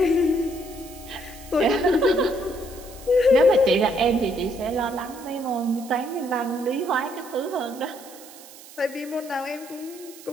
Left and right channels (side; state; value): right; noise; hiss, 19 dB below the sound